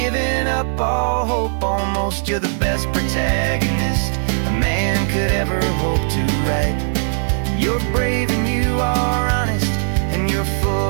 up all hope almost. You're the best protagonist a man could ever hope to write. You're brave and you are honest, and you're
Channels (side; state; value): left; silent; digital silence